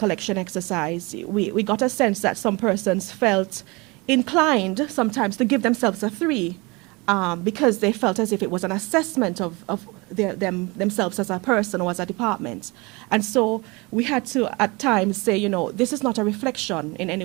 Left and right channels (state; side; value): quieter; left; 25.8 dB